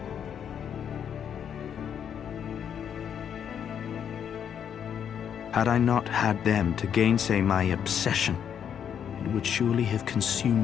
Had I not had them to gainsay my obsession, it would surely have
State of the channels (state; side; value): quieter; right; 8.4 dB